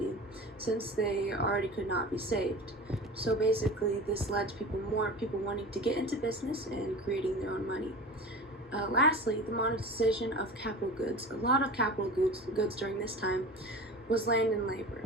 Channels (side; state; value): both; normal; correlation 0.34